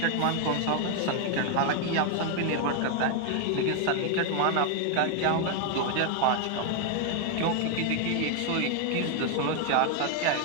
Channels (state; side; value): different; both; correlation 0.01